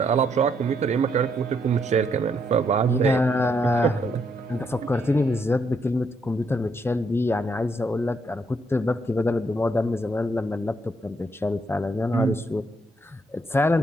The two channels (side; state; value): both; normal; correlation 0.74